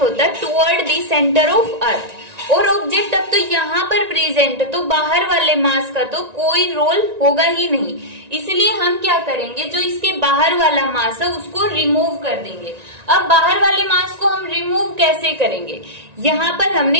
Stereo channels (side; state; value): left; late; 1.9 ms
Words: होता है toward the centre of earth. और ऑब्जेक्ट अब तो यहाँ पर प्रेजेंट है तो बाहर वाले मास का तो कोई रोल होगा ही नहीं, इसलिए हम क्या करेंगे जो इसके बाहर वाला मास है उसको रिमूव कर देंगे। अब बाहर वाले मास को हम रिमूव कैसे करेंगे, यहाँ पर